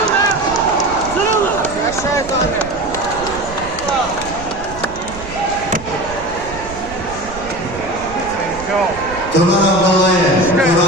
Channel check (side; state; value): right; noise; rumble, 14 dB below the sound